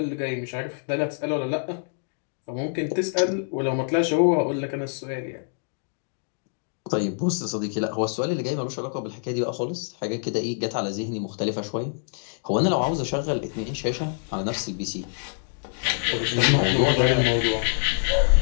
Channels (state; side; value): silent; right; 61 dB below the other